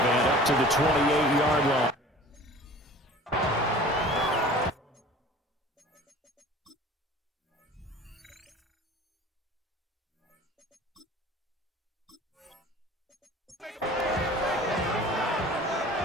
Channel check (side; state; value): both; normal; correlation 0.44